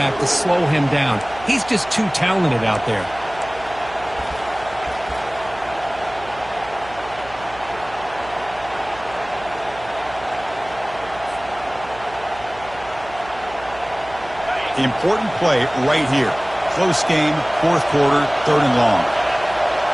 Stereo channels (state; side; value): noise; right; hum, 19 dB below the sound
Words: to slow him down. He's just too talented out there. Important play right here. Close game, 4th quarter, 3rd and long.